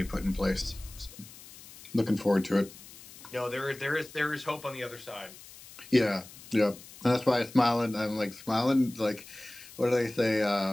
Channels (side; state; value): left; noise; hiss, 18 dB below the sound